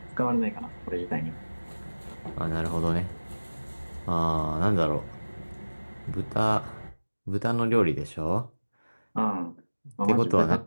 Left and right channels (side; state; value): both; inverted; correlation -1.00